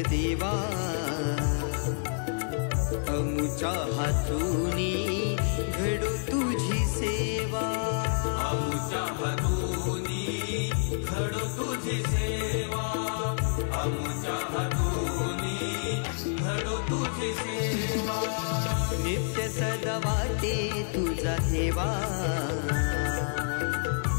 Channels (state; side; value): silent; right; 59 dB below the other